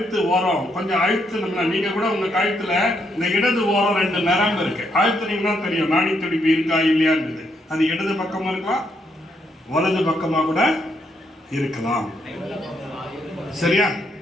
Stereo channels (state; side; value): normal; both; correlation 0.76